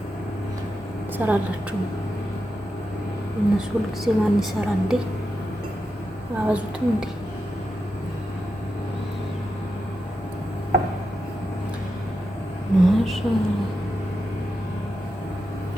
ሰራላችሁ እነሱ ሁልጊዜ ማን ይሰራ እንዴ? አበዙትም እንዴ? ማሻአላህ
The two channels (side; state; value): both; normal; correlation 0.87